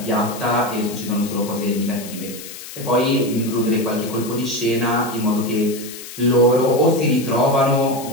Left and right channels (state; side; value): noise; left; hiss, 13 dB below the sound